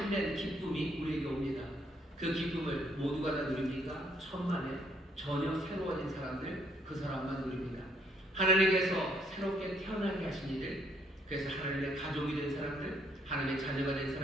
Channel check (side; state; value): both; normal; correlation 0.68